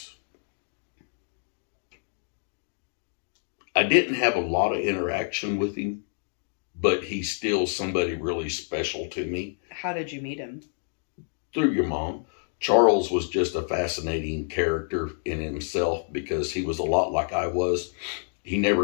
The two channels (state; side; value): silent; right; digital silence